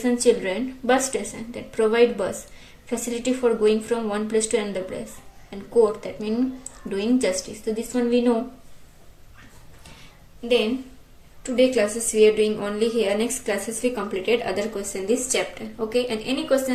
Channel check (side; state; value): both; identical; correlation 1.00